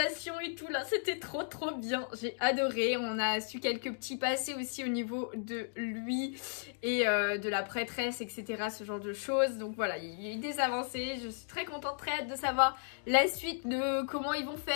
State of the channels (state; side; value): silent; right; digital silence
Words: et tout là, c'était trop bien, j'ai adoré. On a su quelques petits passés aussi au niveau de lui et de la prêtresse, etc. ce genre de choses, donc voilà, il y a eu des avancées, je suis très contente, très hâte de savoir la suite de comment ils vont